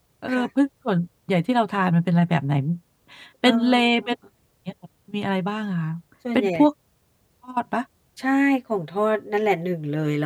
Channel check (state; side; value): identical; both; correlation 1.00